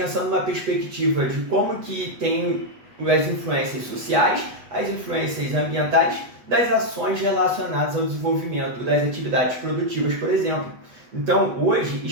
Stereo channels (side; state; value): left; late; 8.1 ms